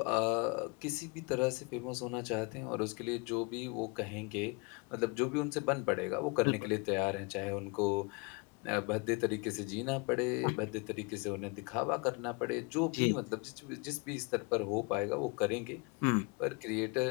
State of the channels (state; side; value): quieter; right; 30.3 dB